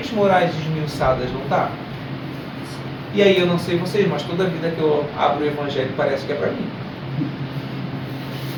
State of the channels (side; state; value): both; identical; correlation 1.00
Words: morais esmiuçadas, não está? E aí eu não sei vocês, mas toda vida que eu abro o Evangelho parece que é para mim.